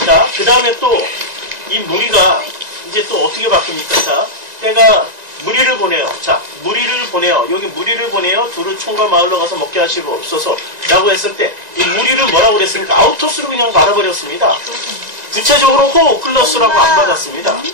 자, 그 다음에 또 이 무리가 이제 또 어떻게 바뀝니까? 자, 때가 무리를 보내요. 자, 무리를 보내요. 여기 무리를 보내요. 두루 총과 마을로 가서 먹게 하시옵소서 라고 했을 때 이 무리를 뭐라고 그랬습니까? 아우토스로 그냥 말아버렸습니다. 구체적으로 호 오클러스라고 안 받았습니다.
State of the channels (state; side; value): late; left; 1.9 ms